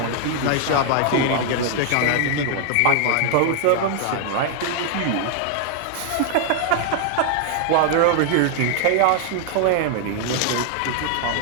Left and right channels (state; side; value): different; both; correlation 0.00